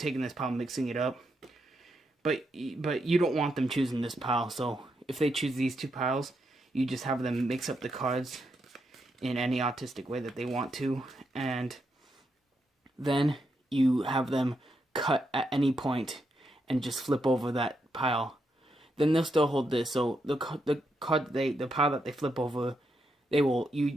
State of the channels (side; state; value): both; normal; correlation 0.81